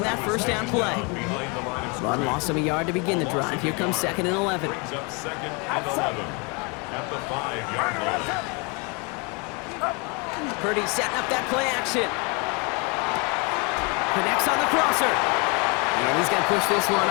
that 1st down play. Run loss of a yard to begin the drive. Here comes 2nd and 11. Brings up 2nd and 11 at the 5-yard line. Purdy setting up that play action. Connects on the crosser. And he's going to push this one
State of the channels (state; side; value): quieter; right; 31.3 dB